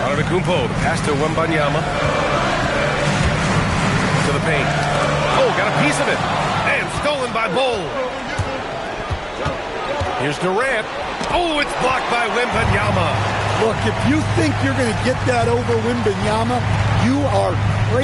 Antetokounmpo, the pass to Wembanyama. To the paint. Oh, got a piece of it. And stolen by Bol. Here's Durant. Oh, it's blocked by Wembanyama. Look, if you think you're going to get that over Wembanyama, you are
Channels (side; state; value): both; identical; correlation 1.00